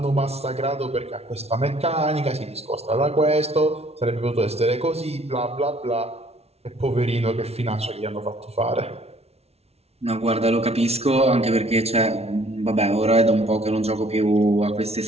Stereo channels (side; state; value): left; late; 0.30 ms